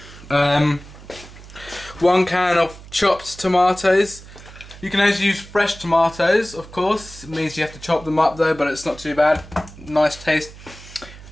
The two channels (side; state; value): right; noise; hum, 18 dB below the sound